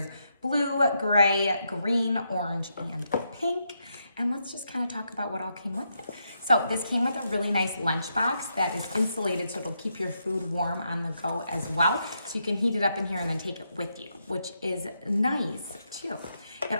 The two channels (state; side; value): inverted; both; correlation -0.81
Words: blue, gray, green, orange, and pink. And let's just kind of talk about what all came with it. So this came with a really nice lunchbox that is insulated so it'll keep your food warm on the go as well. So you can heat it up in here and then take it with you, which is nice too. It